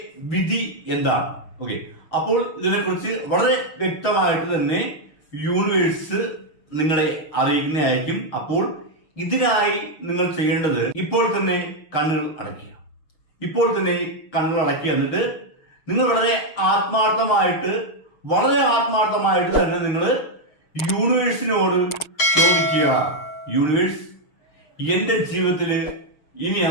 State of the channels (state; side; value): late; right; 6.5 ms